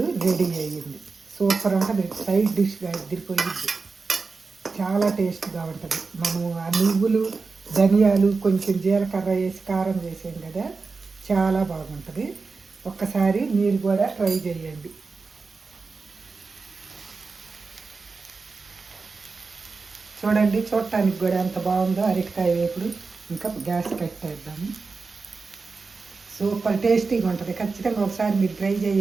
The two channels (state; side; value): quieter; left; 4.4 dB